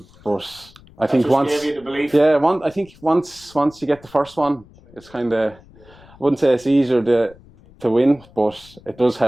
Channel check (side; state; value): left; noise; rumble, 25 dB below the sound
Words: But I think once you get the first one, it's kind of, I wouldn't say it's easier to win, but it does